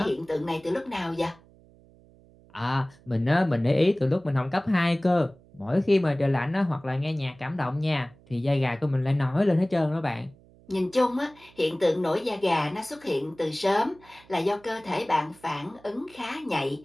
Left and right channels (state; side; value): noise; right; hum, 27 dB below the sound